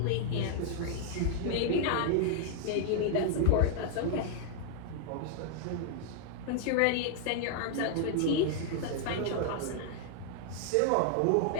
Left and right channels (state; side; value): different; both; correlation 0.00